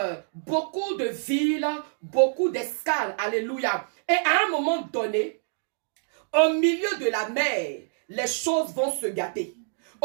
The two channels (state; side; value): silent; left; digital silence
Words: beaucoup de villes, beaucoup d'escales. Alléluia. Et à un moment donné, au milieu de la mer, les choses vont se gâter.